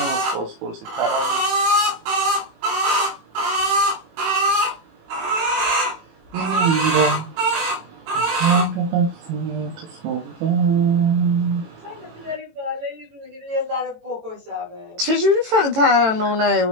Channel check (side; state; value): left; late; 18 ms